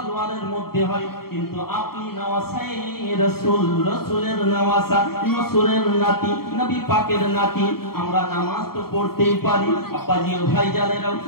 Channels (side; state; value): right; late; 0.94 ms